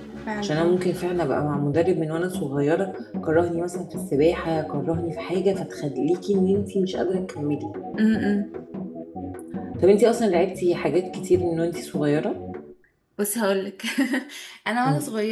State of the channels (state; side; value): identical; both; correlation 1.00